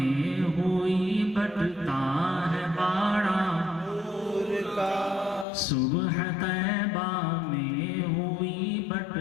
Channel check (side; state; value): right; drops out; at 5.5 s